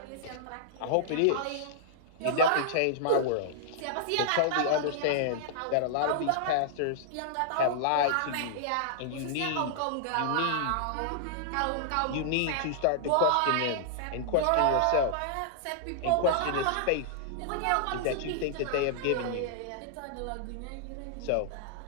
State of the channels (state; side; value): different; both; correlation -0.01